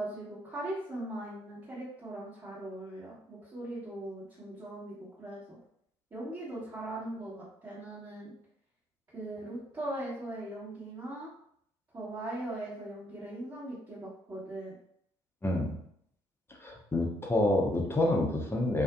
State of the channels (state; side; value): normal; both; correlation 0.73